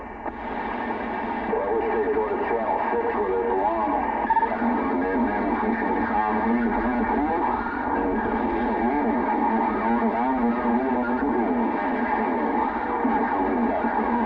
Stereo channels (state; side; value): identical; both; correlation 1.00